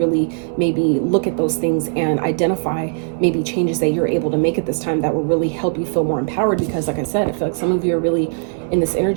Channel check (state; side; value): silent; left; digital silence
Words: maybe look at those things and identify maybe changes that you're able to make at this time that will really help you feel more empowered. Because like I said, I feel like some of you are really in this